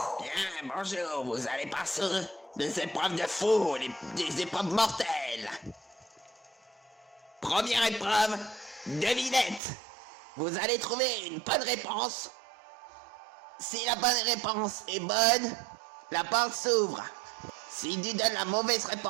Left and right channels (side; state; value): left; drops out; at 9.6 s